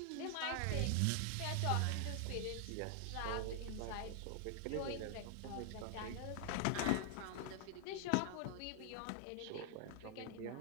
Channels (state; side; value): different; both; correlation 0.00